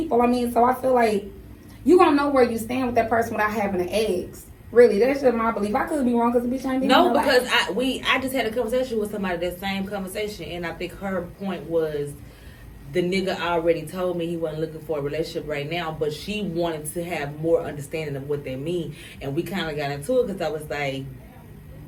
I mean, so I feel like you gonna know where you stand with that person without having to ask. Really, that's just my belief. I could be wrong because the bitch ain't been No, in my because life. I just had a conversation with somebody, that same conversation, and I think her point was the nigga already told me he wasn't looking for a relationship right now, but she wanted to have more understanding of what they mean, and we kind of got into it because I was like,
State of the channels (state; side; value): identical; both; correlation 1.00